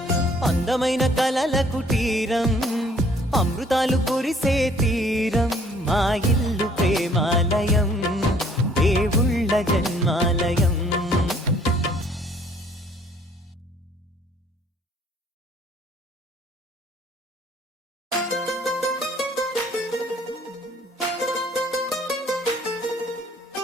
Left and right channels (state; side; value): normal; both; correlation 0.59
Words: అందమైన కలల కుటీరం, అమృతాలు కురిసే తీరం, మా ఇల్లు ప్రేమాలయం, దేవుళ్ళ జన్మాలయం.